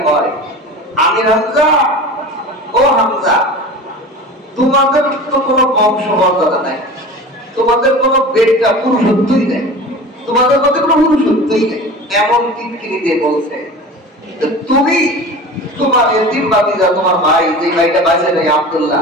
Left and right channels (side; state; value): both; normal; correlation 0.35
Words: কয়, আমির হামজা, ও হামজা, তোমাদের তো কোনো বংশমর্যাদা নাই, তোমাদের কোনো বেটা পুরুষত্বই নেই, তোমাদের মধ্যে কোনো পুরুষত্বই নেই। এমন কিটকিরি দিয়ে বলছে, তুমি তোমার এতিম ভাতিজা, তোমার ভাই, যে ভাইটা বাঁচে নেই